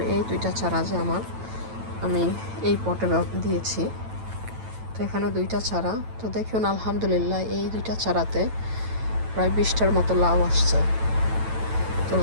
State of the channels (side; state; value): left; late; 9.0 ms